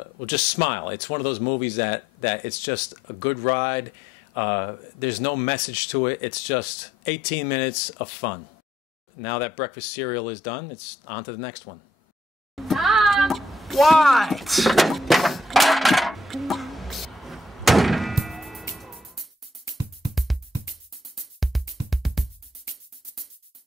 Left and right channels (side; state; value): both; normal; correlation 0.70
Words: just smile. It's one of those movies that it's just a good ride. There's no message to it. It's just 18 minutes of fun. Now that Breakfast Cereal is done, it's on to the next one. Tom! What?